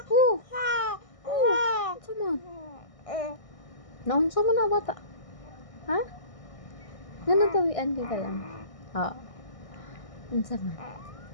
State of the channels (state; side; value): late; right; 1.6 ms